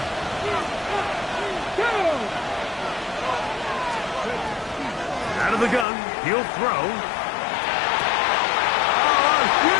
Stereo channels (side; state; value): right; drops out; at 5.9 s